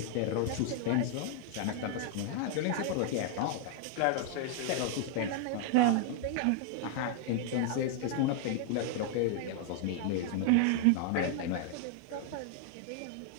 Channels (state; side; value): different; both; correlation 0.00